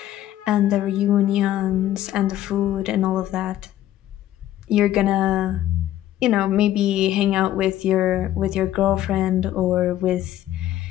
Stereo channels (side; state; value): right; quieter; 13.0 dB